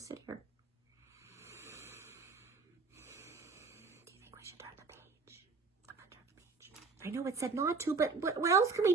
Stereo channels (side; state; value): left; quieter; 4.4 dB